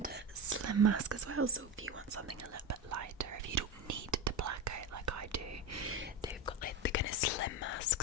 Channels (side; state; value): both; normal; correlation 0.20